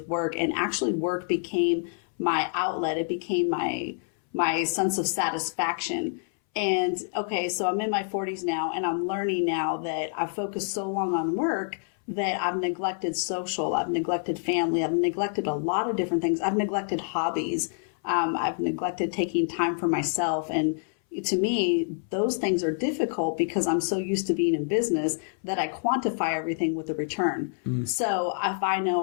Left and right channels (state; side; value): silent; right; 60 dB below the other